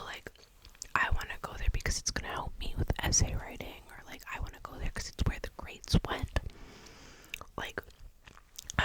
like I want to go there because it's going to help me with essay writing, or like I want to go there because it's where the grades went. Like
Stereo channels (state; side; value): identical; both; correlation 1.00